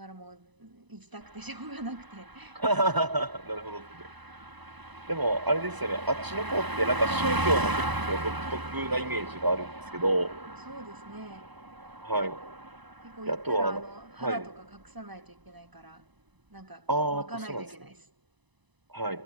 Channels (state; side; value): late; left; 1.0 ms